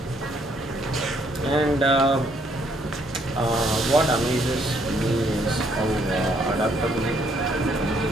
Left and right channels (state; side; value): normal; both; correlation 0.68